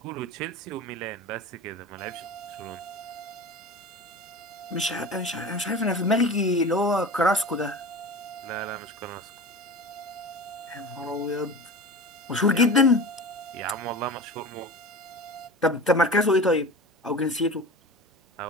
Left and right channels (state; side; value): normal; both; correlation 0.33